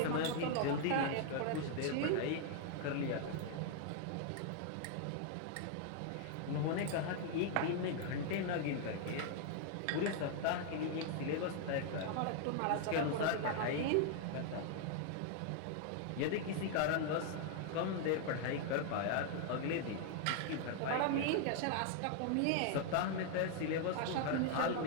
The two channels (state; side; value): different; both; correlation 0.00